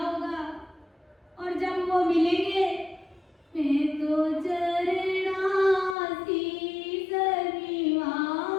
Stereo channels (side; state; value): right; drops out; at 6.0 s